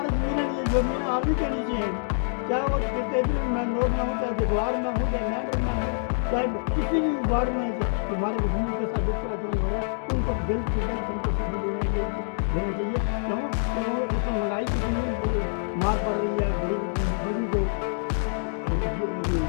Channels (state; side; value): silent; right; digital silence